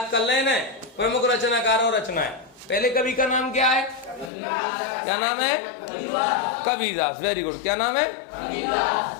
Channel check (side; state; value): right; drops out; at 4.3 s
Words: कर लेना प्रमुख रचनाकार और रचनाएं। पहले कवि का नाम क्या है? क्या नाम है? कबीरदास। Very good. क्या नाम है?